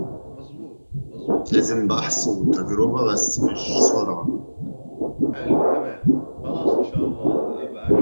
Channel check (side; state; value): both; inverted; correlation -1.00